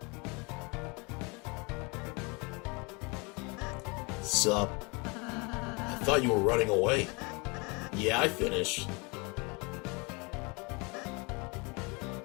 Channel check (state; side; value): quieter; right; 29.2 dB